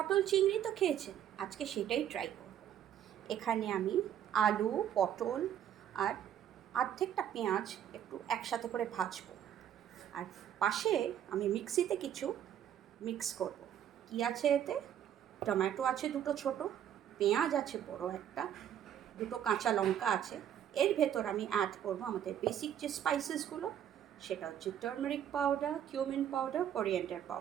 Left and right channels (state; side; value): quieter; left; 10.0 dB